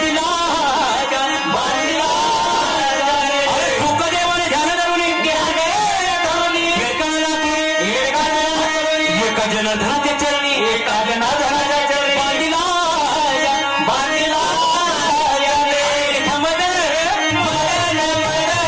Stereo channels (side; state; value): both; identical; correlation 1.00